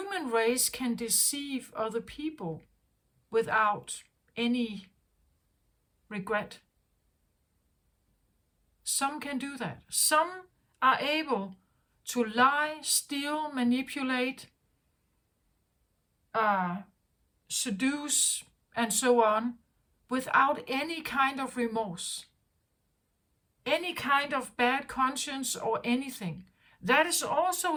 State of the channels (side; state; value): both; identical; correlation 1.00